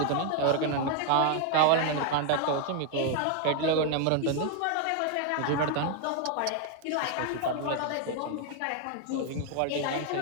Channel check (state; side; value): different; both; correlation 0.00